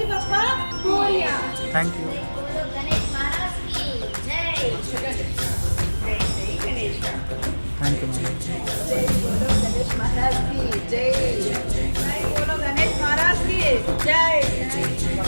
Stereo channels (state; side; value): inverted; both; correlation -1.00